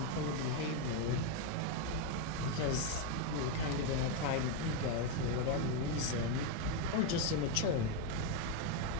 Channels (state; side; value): different; both; correlation 0.02